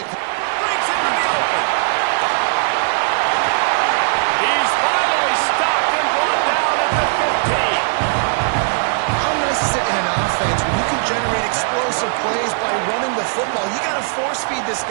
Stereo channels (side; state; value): left; silent; digital silence